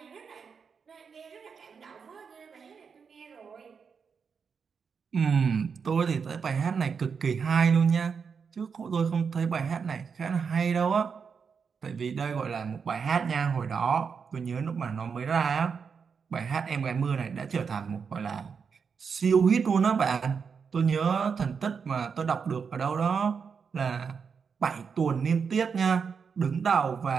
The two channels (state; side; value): quieter; left; 6.0 dB